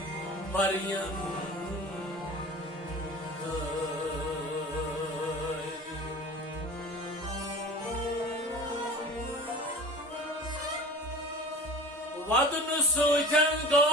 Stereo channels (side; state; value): both; normal; correlation 0.37